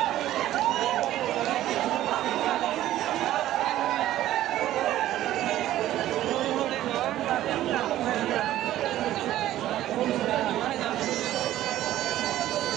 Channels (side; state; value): left; quieter; 13.7 dB